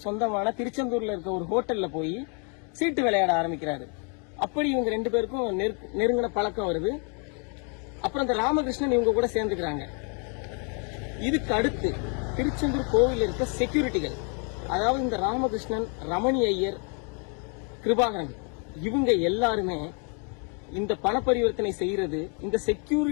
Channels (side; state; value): right; quieter; 38.7 dB